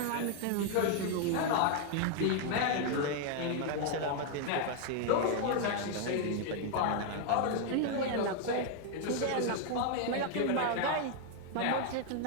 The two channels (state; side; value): different; both; correlation 0.00